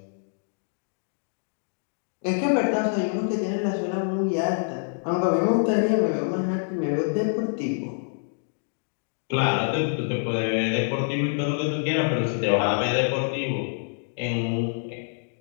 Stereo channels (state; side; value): silent; right; digital silence